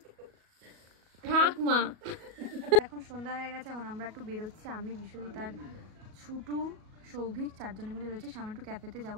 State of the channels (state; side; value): late; left; 37 ms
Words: ঠাকমা এখন সন্ধ্যা হয়ে গেছে, এখন আমরা একটু বেরোচ্ছি, আমি বিশ্বজিৎ আর ছুটু সৌভিক 4 জনে মিলে বেরোচ্ছি। সামনে একটু ক্যাফেতে যাবো,